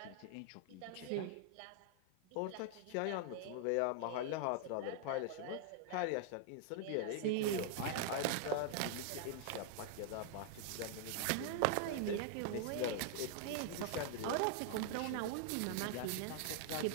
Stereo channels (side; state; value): both; different; correlation 0.00